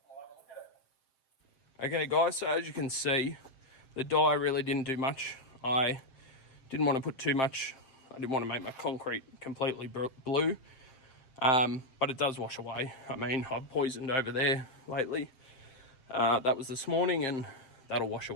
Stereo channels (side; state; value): right; late; 7.6 ms